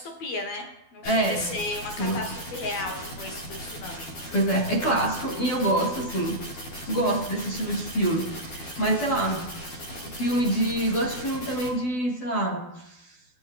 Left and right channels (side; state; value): right; late; 12 ms